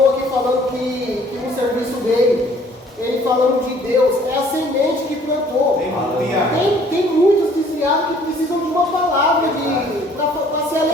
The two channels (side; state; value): both; normal; correlation 0.57